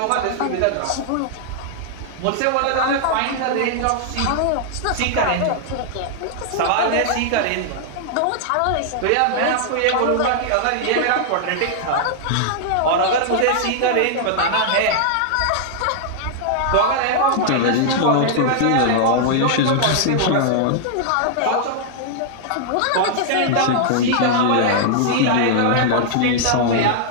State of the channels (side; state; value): both; different; correlation -0.01